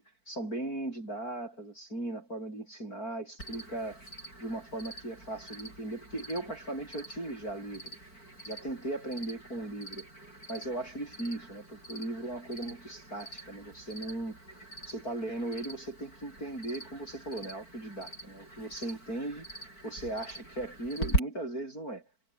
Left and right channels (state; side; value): late; right; 4.5 ms